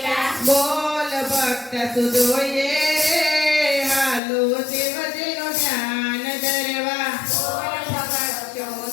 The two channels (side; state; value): right; drops out; at 4.2 s